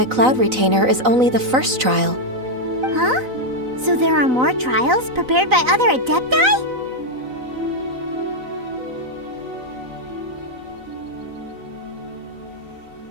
Cloud Retainer is only the first trial. Huh? So there are more trials prepared by other Adepti?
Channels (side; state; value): left; late; 3.9 ms